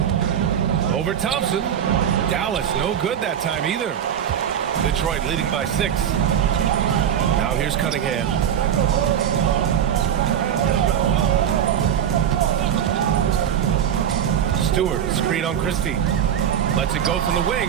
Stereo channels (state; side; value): quieter; left; 9.2 dB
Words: Over Thompson. Dallas, no good that time either. Detroit leading by 6. Now here's Cunningham. Stewart, screen on Christie. Lets it go from the